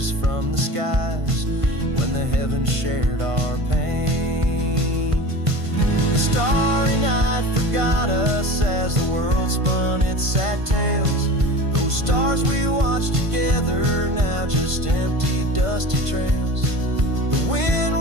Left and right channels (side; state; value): left; late; 1.5 ms